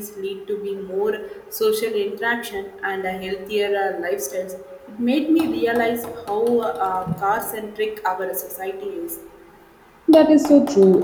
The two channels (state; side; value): identical; both; correlation 1.00